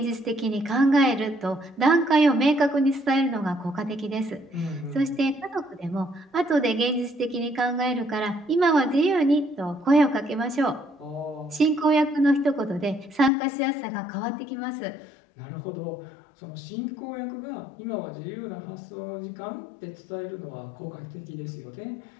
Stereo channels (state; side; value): drops out; right; at 13.3 s